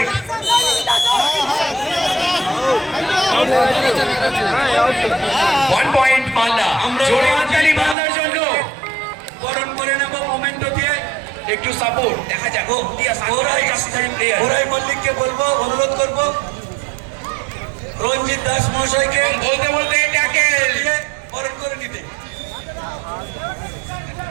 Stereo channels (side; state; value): left; drops out; at 8.0 s